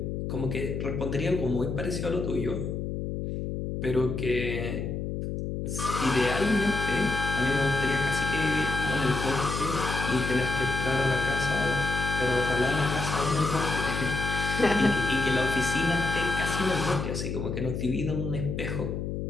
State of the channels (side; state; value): left; noise; hum, 3 dB below the sound